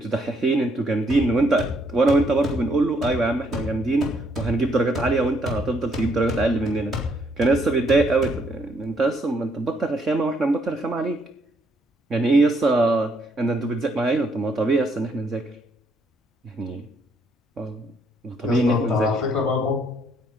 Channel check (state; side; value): normal; both; correlation 0.70